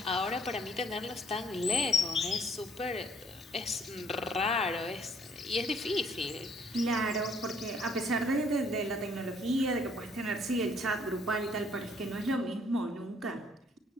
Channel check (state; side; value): normal; both; correlation 0.63